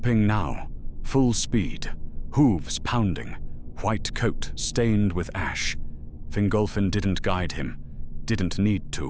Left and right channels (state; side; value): identical; both; correlation 1.00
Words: now, full speed, hooves pounding, white coat stained with ash. Fingolfin didn't guide him, didn't need